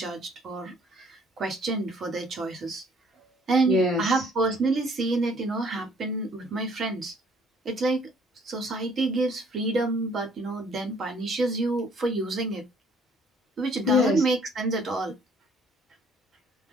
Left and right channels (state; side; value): normal; both; correlation 0.60